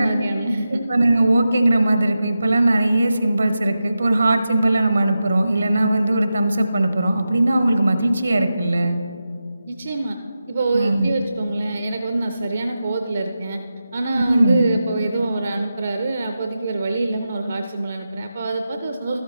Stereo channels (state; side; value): inverted; both; correlation -0.91